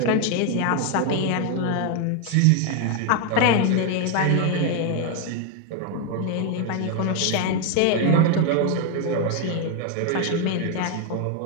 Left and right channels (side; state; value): both; different; correlation 0.01